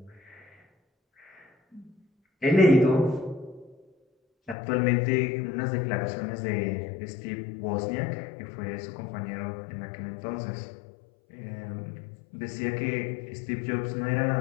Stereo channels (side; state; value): right; drops out; at 4.5 s